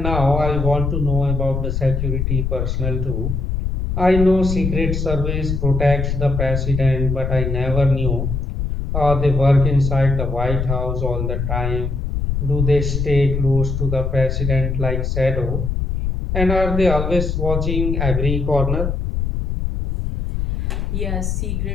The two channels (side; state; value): left; noise; rumble, 2 dB below the sound